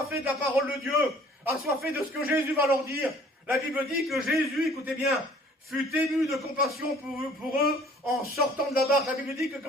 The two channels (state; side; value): normal; both; correlation 0.53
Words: de la parole de Dieu, assoiffés de ce que Jésus va leur dire, la Bible dit que Jésus, écoutez bien, fut ému de compassion pour eux en sortant de la barque. La Bible dit que